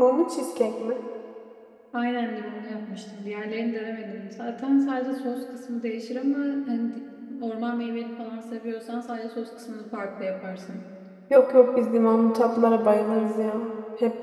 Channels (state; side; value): identical; both; correlation 1.00